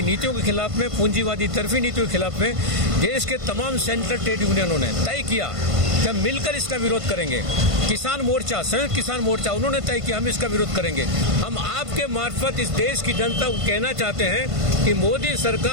नीतियों के खिलाफ में, पूंजीवादी तरफी नीतियों के खिलाफ में देश के तमाम सेंट्रल ट्रेड यूनियनों ने तय किया कि हम मिलकर इसका विरोध करेंगे। किसान मोर्चा, संयुक्त किसान मोर्चा, उन्होंने तय किया हम इसका विरोध करेंगे। हम आपके मार्फत इस देश की जनता को कहना चाहते हैं कि मोदी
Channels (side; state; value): left; late; 1.5 ms